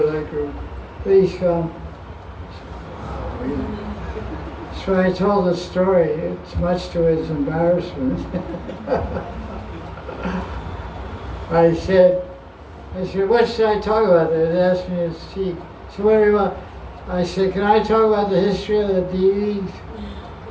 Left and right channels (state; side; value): identical; both; correlation 1.00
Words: that group. Please come. Wow, really? So I told the story. It's much to his embarrassment. I said, what should I talk about? They asked me to speak. So what do you want? I said, can I talk about the history of the deities?